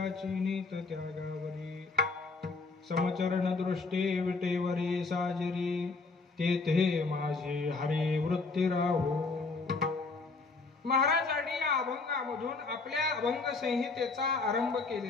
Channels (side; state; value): right; quieter; 4.0 dB